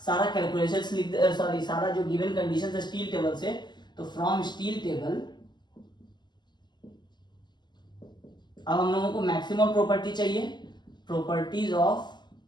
सारा कैलकुलेशन सारा जो गिवन कंडीशन है स्टील टेबल से, तो फ्रॉम स्टील टेबल अब हम लोगों को मैक्सिमम प्रॉपर्टी चाहिए, प्रॉपर्टीज ऑफ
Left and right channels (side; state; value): right; late; 0.21 ms